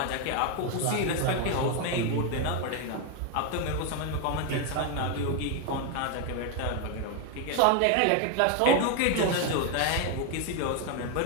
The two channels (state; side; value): different; both; correlation 0.01